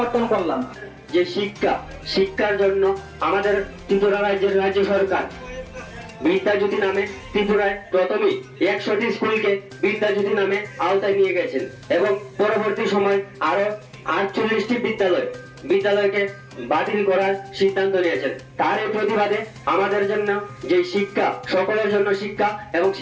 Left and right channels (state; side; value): identical; both; correlation 1.00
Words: করলাম। যে শিক্ষার জন্য আমাদের ত্রিপুরা রাজ্য সরকার বিদ্যাজ্যোতি নামে ত্রিপুরায় প্রথমেই 100টি স্কুলকে বিদ্যাজ্যোতি নামে আওতায় নিয়ে গেছেন এবং পরবর্তী সময় আরো 48টি বিদ্যালয়কে বাতিল করার সিদ্ধান্ত নিয়েছেন। তার এই প্রতিবাদে আমাদের জন্য যে শিক্ষা, সকলের জন্য শিক্ষা এবং